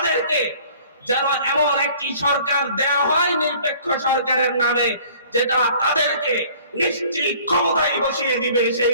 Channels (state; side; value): inverted; both; correlation -0.52